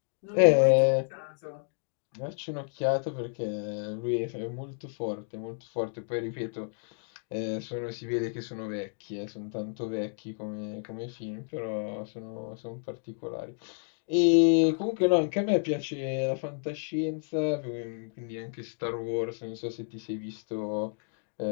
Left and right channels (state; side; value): silent; right; 57 dB below the other